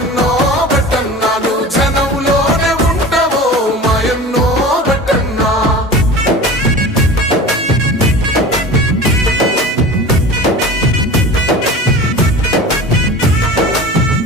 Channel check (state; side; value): normal; both; correlation 0.35